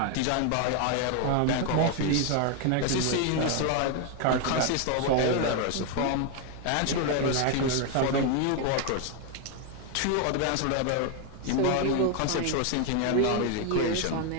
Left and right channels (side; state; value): both; different; correlation 0.01